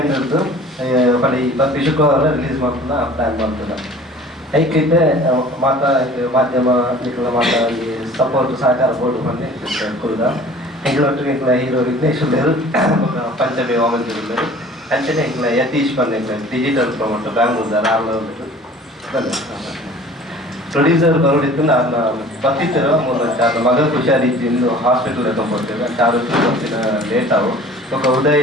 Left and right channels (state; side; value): normal; both; correlation 0.47